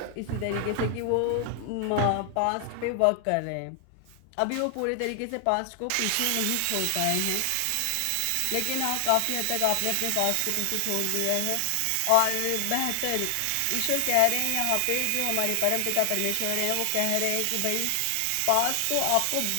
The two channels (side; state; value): both; different; correlation 0.00